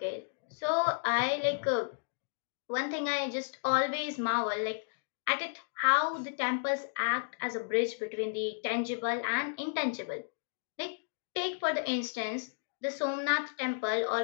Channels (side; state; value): right; silent; digital silence